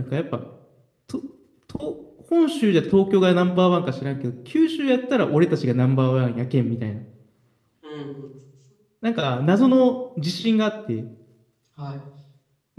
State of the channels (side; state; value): both; identical; correlation 1.00